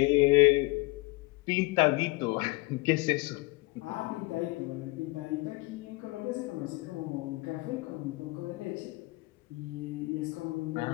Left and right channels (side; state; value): right; quieter; 23.8 dB